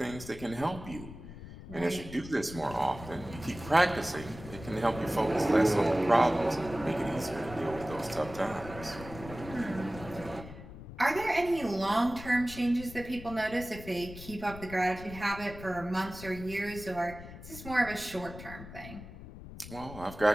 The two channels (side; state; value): left; noise; rumble, 13 dB below the sound